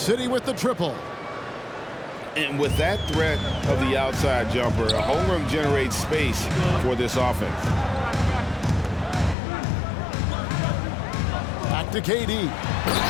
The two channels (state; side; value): drops out; right; at 9.3 s